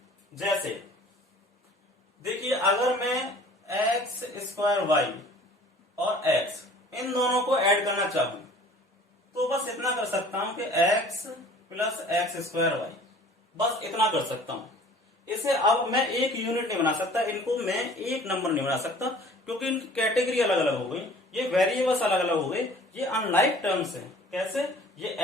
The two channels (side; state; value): both; normal; correlation 0.49